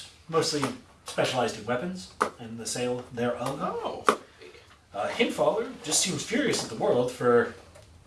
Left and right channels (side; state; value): both; identical; correlation 1.00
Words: mostly specialized in weapons and the sale thereof. Oh. Hinfaller just seems furious at the world for